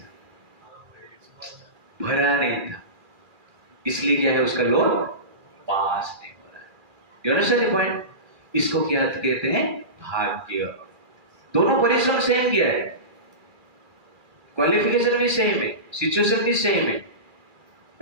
भरा नहीं था, इसलिए क्या है? उसका लोन पास नहीं हो रहा है। You understand the point? इसको क्या कहते हैं? भाग्य। दोनों परिश्रम सेम किया है, क्वालिफिकेशन भी सेम है, सिचुएशन भी सेम है,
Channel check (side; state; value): left; late; 2.4 ms